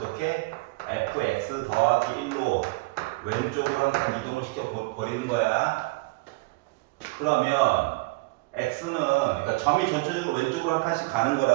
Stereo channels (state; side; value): quieter; left; 24.7 dB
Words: fx 더하기 1로 왼쪽으로 한 칸 이동을 시켜버리는 거야. 그러면 x는, 그러니까 점이 전체적으로 왼쪽으로 한 칸씩 가는